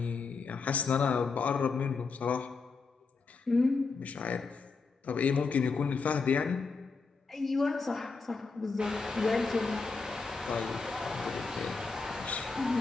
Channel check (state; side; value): quieter; right; 4.5 dB